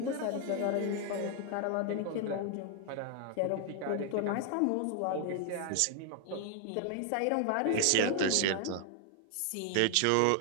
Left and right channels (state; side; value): different; both; correlation 0.00